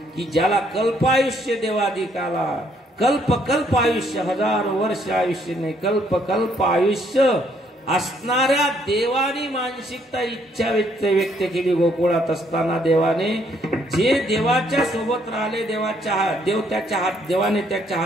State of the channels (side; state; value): both; normal; correlation 0.68